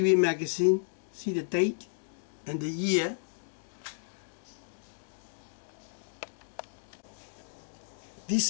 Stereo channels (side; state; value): right; silent; digital silence